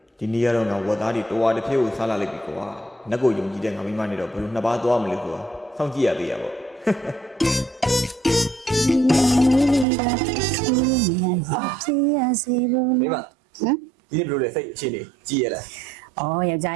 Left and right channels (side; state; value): left; drops out; at 9.9 s